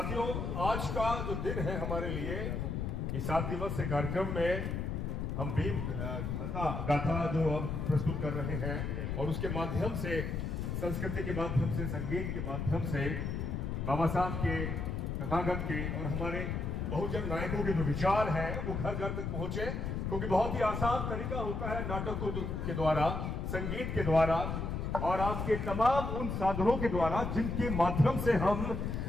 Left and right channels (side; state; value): left; noise; rumble, 2 dB below the sound